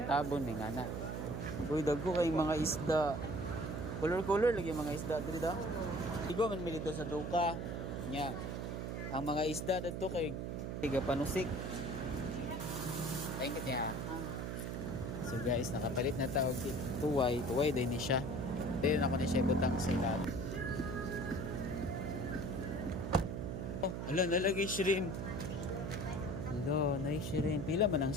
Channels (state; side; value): noise; right; hum, 4 dB below the sound